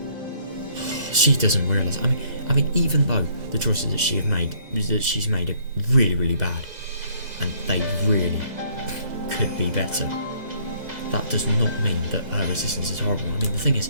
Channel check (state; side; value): late; left; 2.0 ms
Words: She doesn't realise. I mean, even though the choices that she's made are really bad, and they really could be better, that does not mean that her existence is horrible. I mean, the thing is,